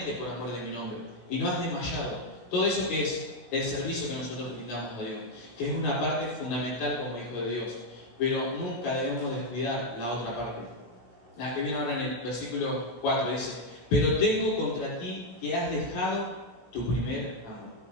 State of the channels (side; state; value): right; late; 17 ms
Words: por amor de mi nombre, y no has desmayado. Todo eso que es el servicio que nosotros brindamos a Dios, que es una parte fundamental como hijo de Dios, pero nunca debemos descuidar la otra parte. La que viene ahora en el versículo 4 dice: pero tengo contra ti que has dejado tu primer amor.